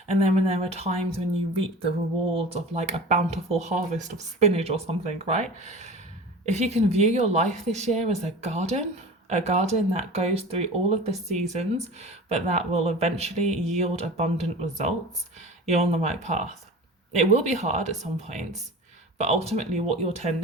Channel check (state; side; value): normal; both; correlation 0.36